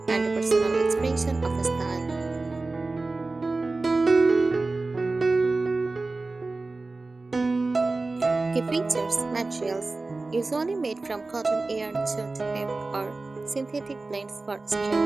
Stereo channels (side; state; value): left; quieter; 3.4 dB